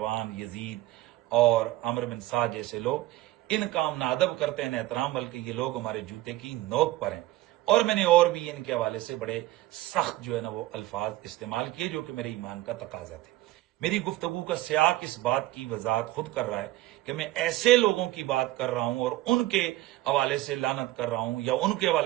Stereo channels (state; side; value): quieter; left; 16.4 dB